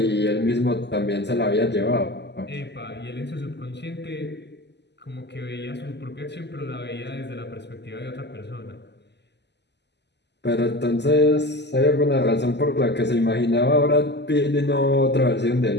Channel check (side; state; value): right; late; 0.50 ms